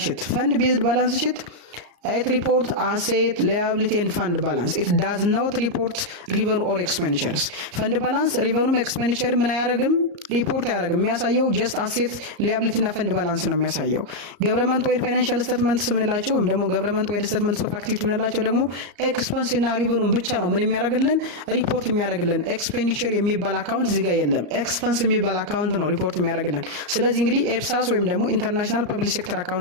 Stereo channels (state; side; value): late; left; 34 ms